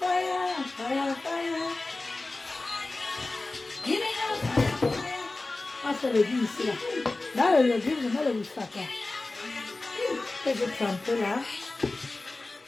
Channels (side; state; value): right; quieter; 3.2 dB